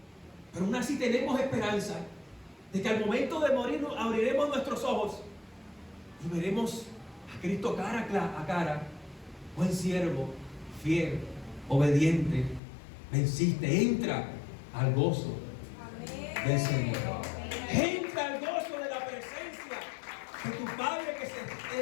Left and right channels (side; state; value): right; drops out; at 12.6 s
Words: pero aún así tenemos esperanza de que al momento de morir abriremos nuestros ojos y veremos a Cristo cara a cara. Buen siervo, fiel, obediente, venciste. Entra al gozo del Señor. Entra al gozo de la presencia de tu Padre